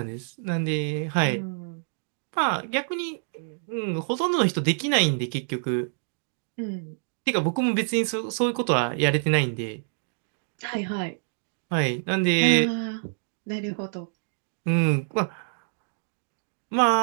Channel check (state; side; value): silent; left; digital silence